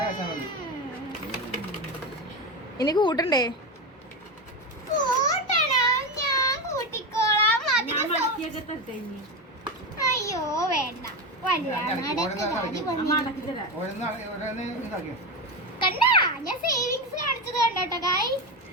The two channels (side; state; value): both; normal; correlation 0.16